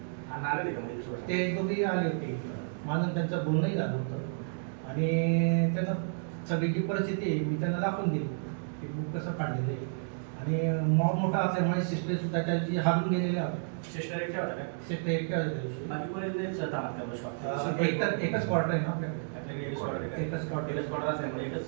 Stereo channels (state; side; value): silent; left; digital silence